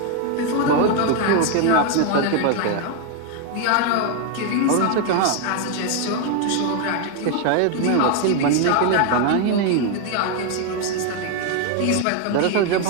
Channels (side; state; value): both; different; correlation 0.01